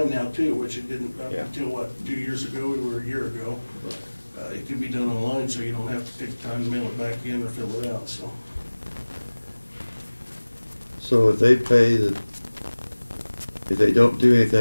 now too, which it didn't up Yeah. until, what, 2 years ago or a year ago. It can be done online, so you don't have to take the time to mail it back in or fill it out, so. so if they pay if they don't do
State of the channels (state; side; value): inverted; both; correlation -1.00